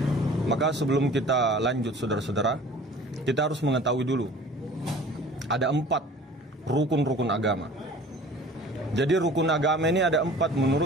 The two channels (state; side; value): normal; both; correlation 0.46